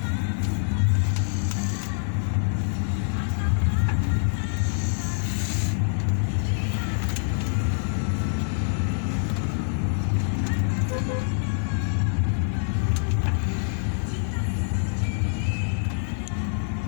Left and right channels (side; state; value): right; silent; digital silence